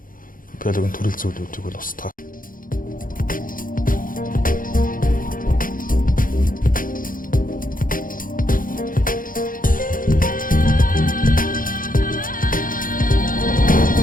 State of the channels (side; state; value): right; late; 0.40 ms